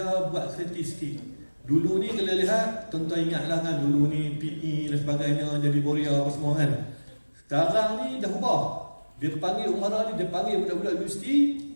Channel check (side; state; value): both; inverted; correlation -1.00